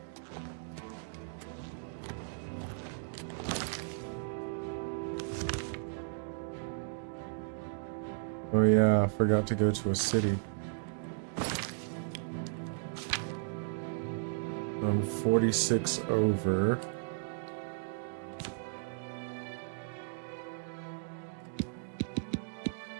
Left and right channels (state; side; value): silent; left; digital silence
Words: Oh yeah, I forgot to go to a city. I'm 46 over.